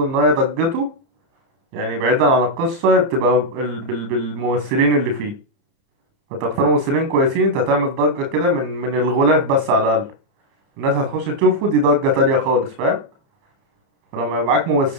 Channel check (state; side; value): late; left; 30 ms